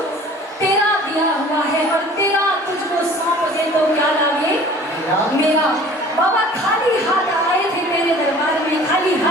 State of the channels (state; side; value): normal; both; correlation 0.47